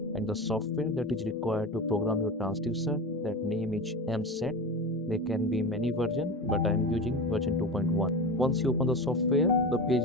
and the software that is required to program your transducer. That name is MSET. There can be many versions, but I am using version 2.1. Once you open the software, the page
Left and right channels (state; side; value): normal; both; correlation 0.26